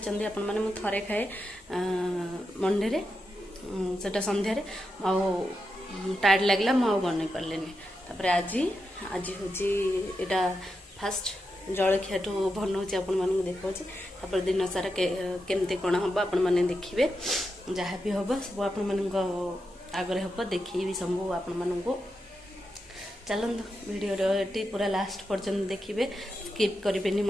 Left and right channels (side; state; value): both; normal; correlation 0.87